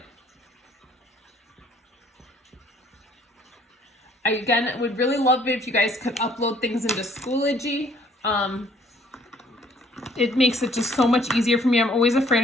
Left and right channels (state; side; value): normal; both; correlation 0.61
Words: I, again, would really love it if you guys could upload things into Schoology. It makes it just so much easier for me. I'm always afraid